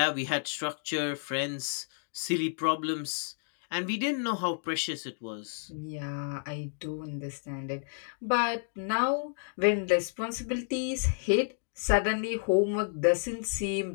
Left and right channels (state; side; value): silent; right; digital silence